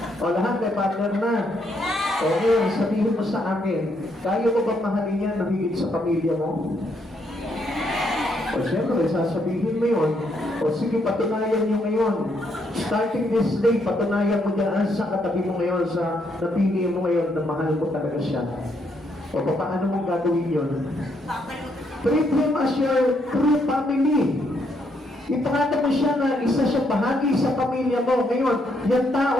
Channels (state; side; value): normal; both; correlation 0.74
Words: O lahat may partner na. Okay, sabihin mo sa akin, kaya mo bang mahalin yan na higit sa pamilya mo? O siyempre, sasabihin mo yun. O sige, patunayan nyo ngayon. Starting this day, patunayan mo dyan sa katabi mo ngayon, sa napili mo ngayon na mahal mo talaga siya. O paano mo gagawin yun? Treat him as your true family. Ipakita mo siya na isa siya bahagi sa pamilya mo. Ngayon, yung tao